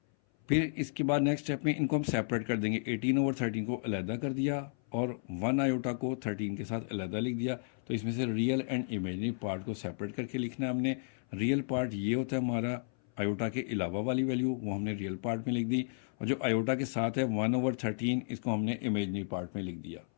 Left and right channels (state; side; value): silent; right; 56 dB below the other